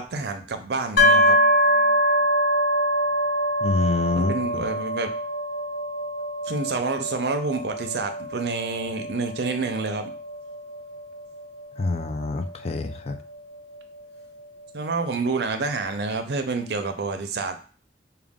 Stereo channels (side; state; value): both; normal; correlation -0.11